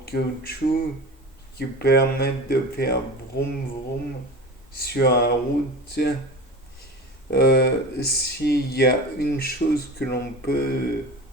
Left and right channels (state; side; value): normal; both; correlation 0.32